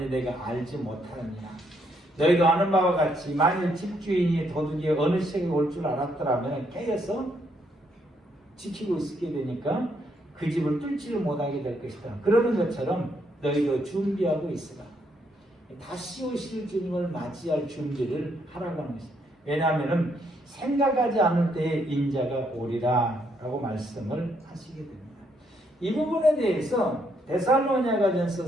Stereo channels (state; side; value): normal; both; correlation 0.73